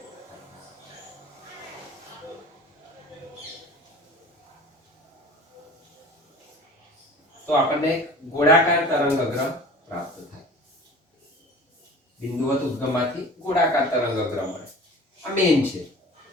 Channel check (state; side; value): normal; both; correlation 0.42